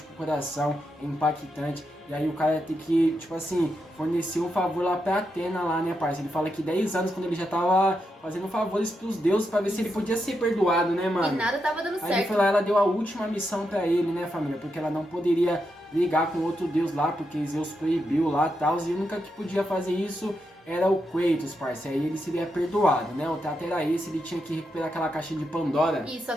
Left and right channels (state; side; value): normal; both; correlation 0.84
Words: com o coração, é impactante. E aí o cara tem que, tipo assim, fornecer um favor lá pra Atena lá, né, parça? Ele fala que 10 anos, quando ele já tava fazendo favores pros deuses pra ver se ele podia ser perdoado, né, E mano? nada tava dando Aí ele certo. foi lá, ela deu a última missão pra ele, né, família? Porque ela não poderia brigar com outro deus lá, porque Zeus proibiu lá e tal. E a única que podia fazer isso era o Kratos, parça. Aí ele seria perdoado, né? O trato era esse, ele tinha que recuperar aquela caixa de Pandora. Isso,